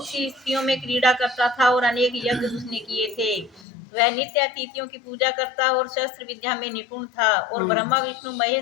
सी स्त्रियों में क्रीड़ा करता था और अनेक यज्ञ उसने किए थे। वह नित्य अतिथियों की पूजा करता और शस्त्र विद्या में निपुण था और ब्रह्मा, विष्णु,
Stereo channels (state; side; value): drops out; right; at 3.7 s